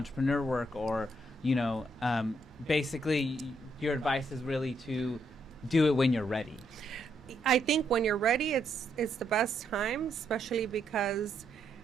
work, or you know, basically your advice is really to do it when you're ready. I think when you're ready, it's the best time, especially because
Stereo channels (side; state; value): both; normal; correlation 0.76